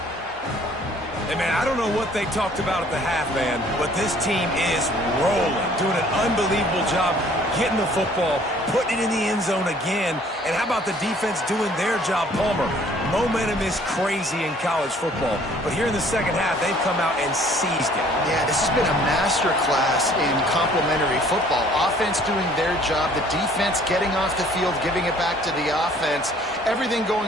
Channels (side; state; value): both; normal; correlation 0.57